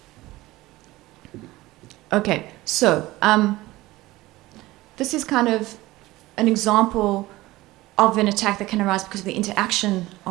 Okay, so this is kind of an example of an attack that can arise because of the interaction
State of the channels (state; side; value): quieter; left; 18.5 dB